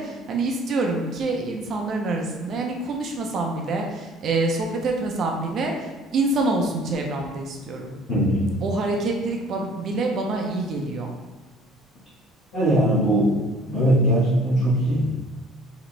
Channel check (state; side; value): normal; both; correlation 0.53